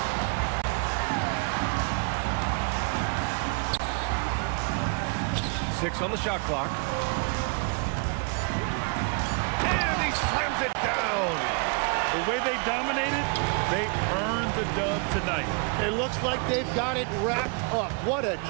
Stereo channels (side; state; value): left; quieter; 35.3 dB